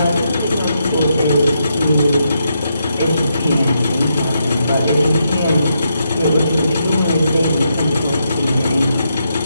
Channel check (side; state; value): both; inverted; correlation -0.80